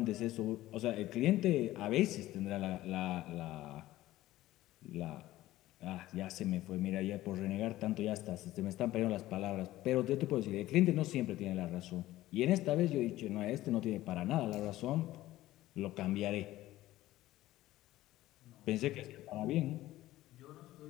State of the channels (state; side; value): quieter; right; 15.8 dB